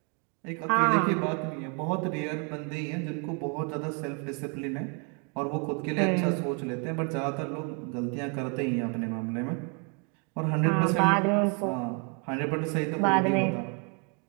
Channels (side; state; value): left; quieter; 36.5 dB